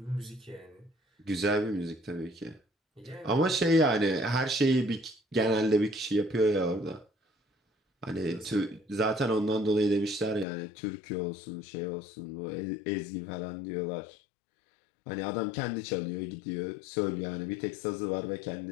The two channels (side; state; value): right; drops out; at 10.5 s